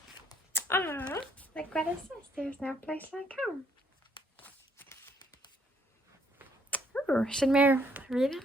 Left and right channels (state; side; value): normal; both; correlation 0.68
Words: Ah, like Greta says, there's no place like home. Ooh, should Meur read it?